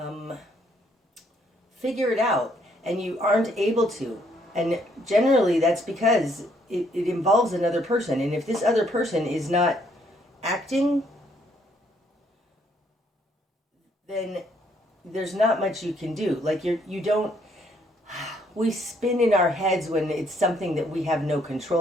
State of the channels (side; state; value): both; normal; correlation 0.69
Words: figure it out, and you aren't able to. And generally that's because it involves another person. And if this other person is not acting, then there's not much you can do. Like you don't, we spin in our heads when it's something that we have no